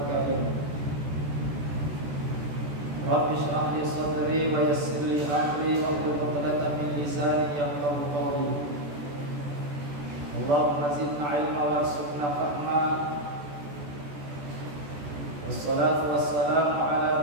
karim. Rabbi shrah li sadri wa yassir li amri wahlul 'uqdatam min lisani yafqahu qawli. Allahumma zidna ilma warzuqna fahma. Wassalatu wassalamu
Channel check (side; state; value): left; late; 14 ms